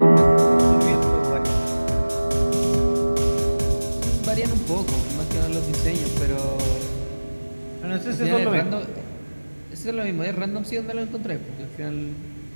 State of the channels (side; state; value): both; inverted; correlation -1.00